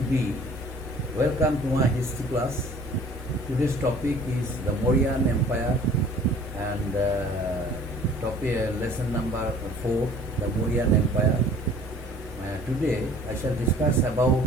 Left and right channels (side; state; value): both; normal; correlation 0.50